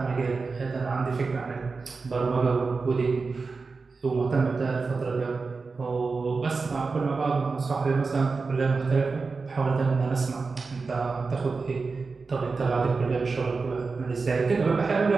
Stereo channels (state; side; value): quieter; left; 4.4 dB